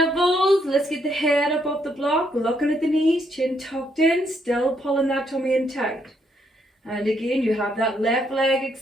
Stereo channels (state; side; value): normal; both; correlation 0.74